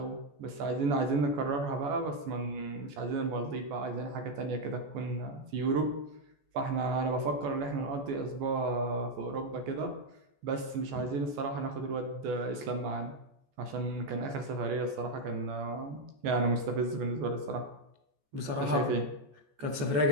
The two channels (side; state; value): left; late; 14 ms